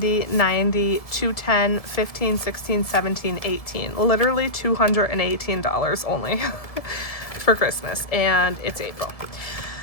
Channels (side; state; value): right; late; 1.7 ms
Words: 90, 210, 15, 16, 17, 18. Literally $218 only for Christmas, and it's April.